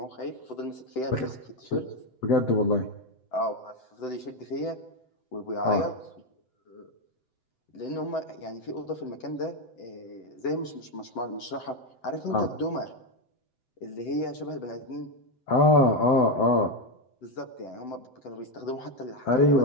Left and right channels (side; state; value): right; late; 7.8 ms